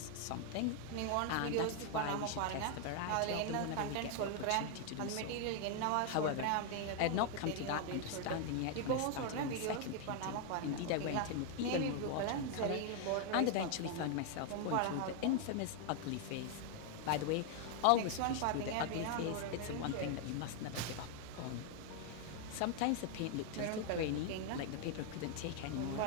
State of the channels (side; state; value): both; different; correlation 0.00